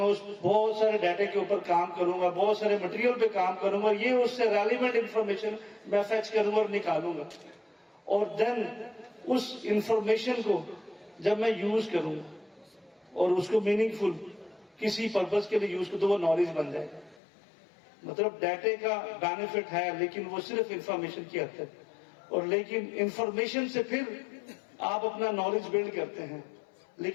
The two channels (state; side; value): drops out; right; at 17.2 s